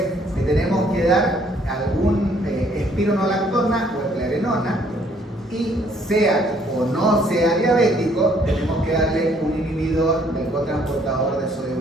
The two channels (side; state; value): both; normal; correlation 0.64